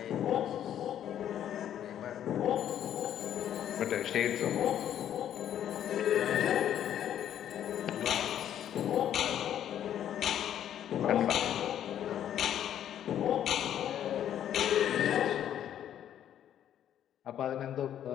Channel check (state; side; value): quieter; right; 10.5 dB